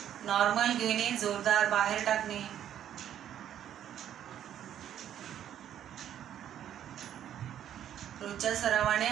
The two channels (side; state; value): left; quieter; 10.4 dB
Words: नॉर्मल घेणे, जोरदार बाहेर टाकणे. रोजच्या सरावाने